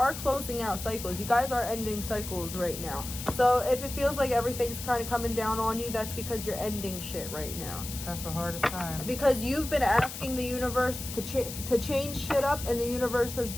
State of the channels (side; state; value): left; noise; hiss, 9 dB below the sound